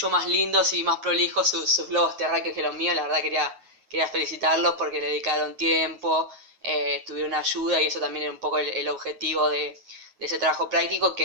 más lindos y más prolijos sus globos terráqueos que los míos. La verdad quería felicitarlos porque le dedicaron tiempo, tuvieron ayuda y eso también era un poco el objetivo de ese trabajo práctico,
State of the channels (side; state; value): left; late; 9.4 ms